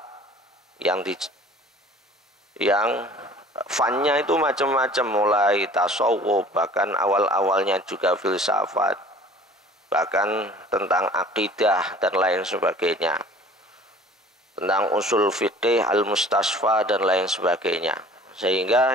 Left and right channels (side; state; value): both; normal; correlation 0.48